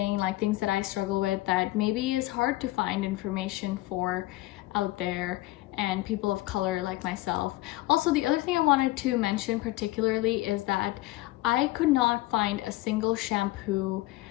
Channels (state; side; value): quieter; right; 18.4 dB